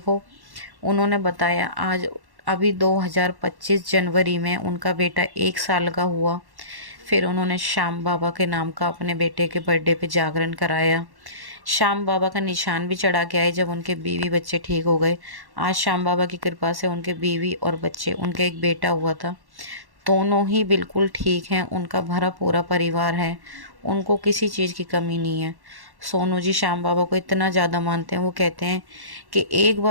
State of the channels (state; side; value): late; left; 1.1 ms